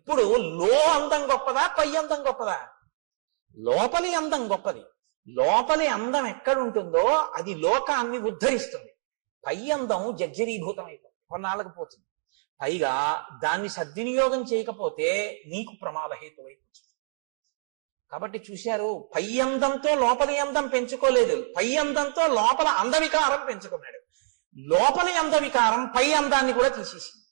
అందం గొప్పదా, పై అందం గొప్పదా? లోపలి అందం గొప్పది. లోపలి అందం ఎక్కడుంటుందో అది లోకాన్ని ఉద్ధరిస్తుంది. పై అందం జర్జరీభూతం అయిపోతుంది, కొన్నాళ్ళకు పోతుంది. పైగా దాన్ని సద్వినియోగం చేయకపోతే నీకు ప్రమాదహేతువైపోతుంది. కాబట్టి చూశారు, పై అందంతో లోపలి అందం పెంచుకోలేదు, పై అందంతో లోపల అందవికారం పెంచుకున్నాడు. లోపలి అందవికారం పై అందాన్ని కూడా తీసేసింది.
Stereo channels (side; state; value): left; silent; digital silence